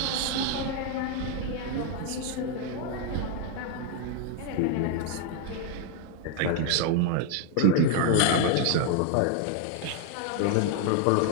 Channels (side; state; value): both; different; correlation 0.00